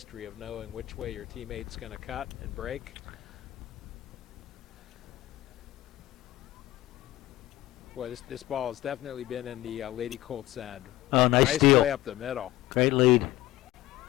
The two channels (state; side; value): quieter; right; 16.3 dB